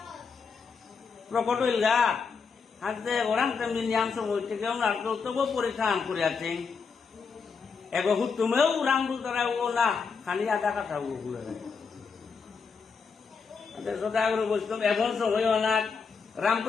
প্রকট হইল গা হাতে ওরাম তেমনি নিয়াম সময় থেকে ওনার তবু পরীক্ষা আন করে আছেন এগো তুমেও রাম বল দ্বারা ও না খালি আধা কথা বলে সদাগর বৈষ্ণব এমন সময় অনাক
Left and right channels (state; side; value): quieter; right; 5.5 dB